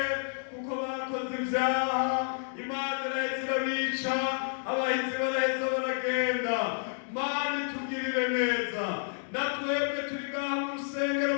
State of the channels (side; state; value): right; silent; digital silence